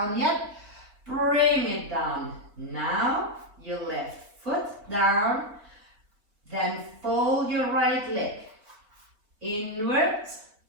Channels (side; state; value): left; late; 4.6 ms